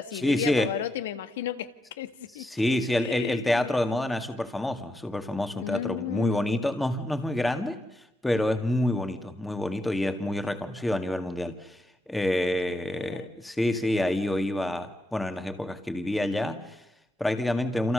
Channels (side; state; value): both; normal; correlation 0.83